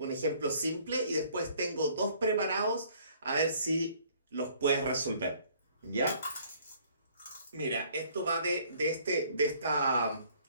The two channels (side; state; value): both; inverted; correlation -0.59